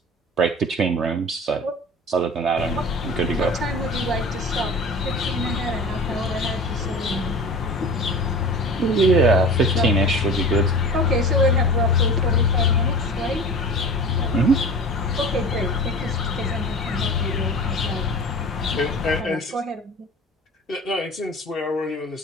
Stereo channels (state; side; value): normal; both; correlation 0.37